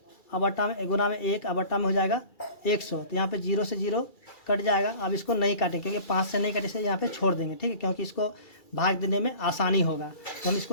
बटा में गुना में 1 बटा में हो जाएगा 100। तो यहाँ पे 0 से 0 कट जाएगा। अब इसको नहीं काटेंगे क्योंकि 5 से नहीं कटे से यहाँ पे छोड़ देंगे, ठीक है, क्योंकि इसको भाग देने में आसानी होगा। तो हम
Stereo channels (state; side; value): late; right; 2.3 ms